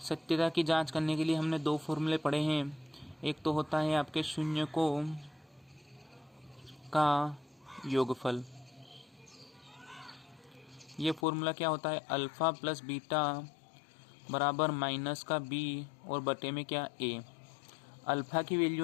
सत्यता की जांच करने के लिए हमने 2 फॉर्मूले पढ़े हैं। एक तो होता है आपके शून्यकों का योगफल। ये फॉर्मूला क्या होता है, अल्फ़ा + बीटा बराबर -b और बटे में क्या, a। अल्फ़ा की वैल्यू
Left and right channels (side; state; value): right; drops out; at 11.2 s